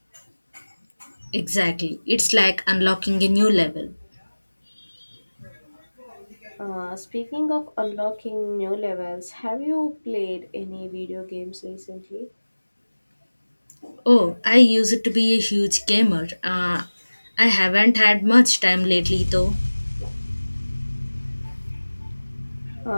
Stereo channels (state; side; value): inverted; both; correlation -1.00